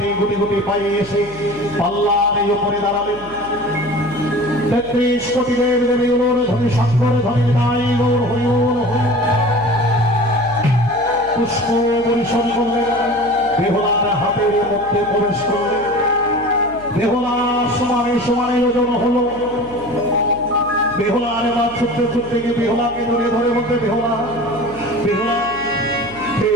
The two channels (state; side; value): noise; right; hum, 19 dB below the sound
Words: গুটি গুটি পায়ে এসে পাল্লার উপরে দাঁড়ালেন। 33 কোটি দেব দেবী ওর ধনী শঙ্কর ধনী নাই গৌর হরি ওর হরি পুষ্প পরিশন করলেন। বেহুলার হাতের মধ্যে প্রবেশ করলেন। বেহুলা সমানে সমানে ওজন হলো। বেহুলা আরে বাদ ছুটতে ছুটতে গিয়ে বেহুলাকে ধরে ধরে বলতে, বেহুলা বেহুলা